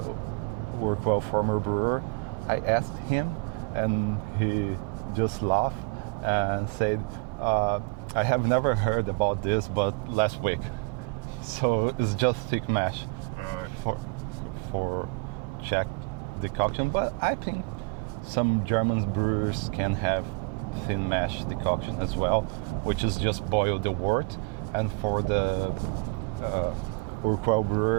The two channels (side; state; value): left; quieter; 30.8 dB